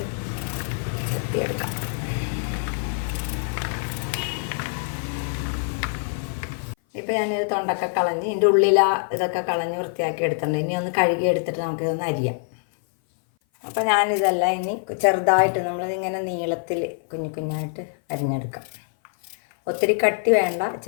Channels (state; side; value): silent; right; 58 dB below the other